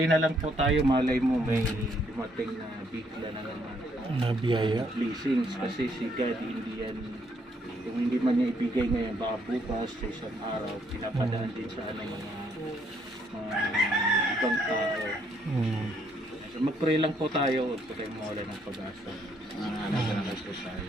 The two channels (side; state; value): both; normal; correlation 0.70